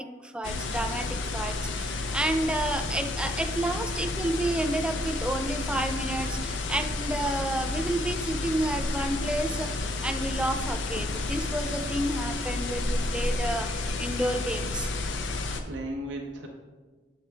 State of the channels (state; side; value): normal; both; correlation 0.69